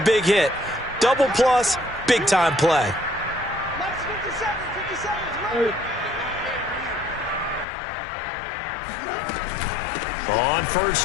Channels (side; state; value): right; drops out; at 7.7 s